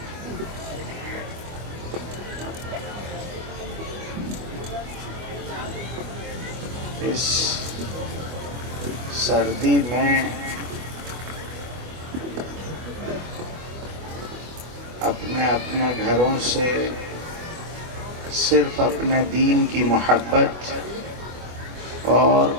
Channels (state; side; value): late; left; 24 ms